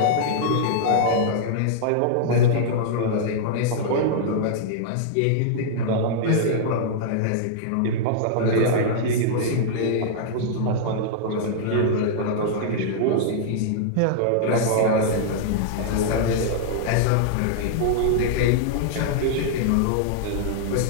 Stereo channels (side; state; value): both; different; correlation -0.02